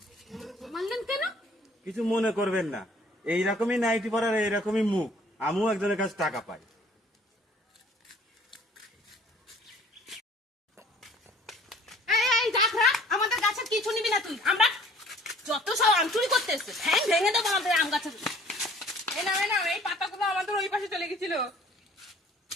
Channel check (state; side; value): normal; both; correlation 0.54